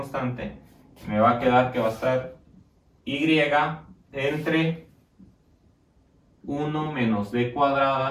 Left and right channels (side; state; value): both; identical; correlation 1.00